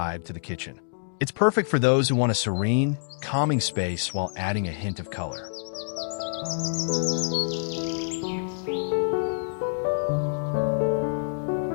to the kitchen. It's perfect for those who want a serene, calming space while adding a hint of color.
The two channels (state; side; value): silent; right; digital silence